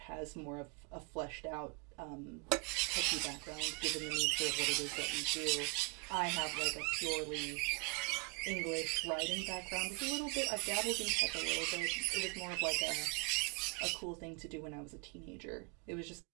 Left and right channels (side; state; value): left; quieter; 32.3 dB